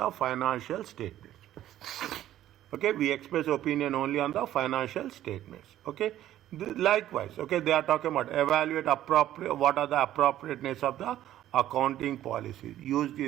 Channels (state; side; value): quieter; left; 12.8 dB